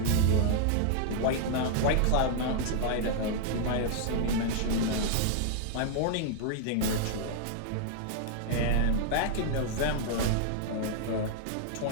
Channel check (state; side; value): different; both; correlation -0.01